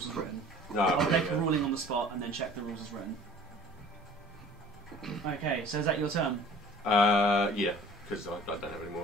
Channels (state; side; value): normal; both; correlation 0.48